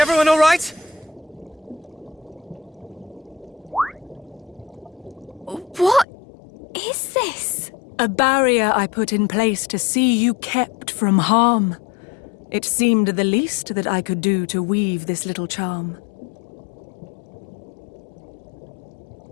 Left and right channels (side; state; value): right; drops out; at 6.1 s